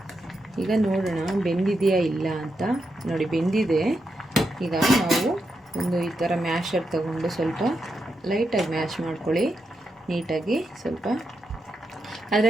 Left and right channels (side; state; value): both; normal; correlation 0.85